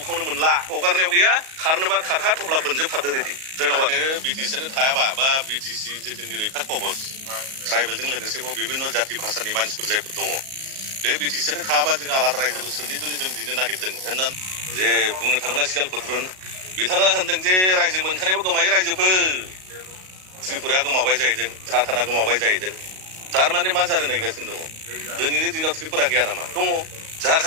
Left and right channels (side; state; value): left; late; 38 ms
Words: मोनला हगारनायाव गैया खारनोबा खारखा थब्ला बोनजोबखादो रेडि धन्यबाद बिटिसिआनो थायाबा बा बिटिसि जे जोंनि रैखा कबच ट्राइबेलजों लोगोसे बिभिन्न जाति भाषानि मानसिफोर जायफोर दङ बे बिटिसिआनो थायाबा जों आलादा रायजोखौ सोरनि जुनै जों दिनो नागिरदों होननानै जे बुंनो थाङोब्ला सियाल खुद्रुन बिथाङा होनदों जे रायजो मोनखानायाबो गोमायो रायजोफोर त्रिपुराया गोमाबाय जाहैदों झारखन्डआ गोमाबाय जाहैदों थारमाने मा जानो नागिरगासिनो दङ दिनैनि दिनाव त्रिपुरा गैया नामा दङ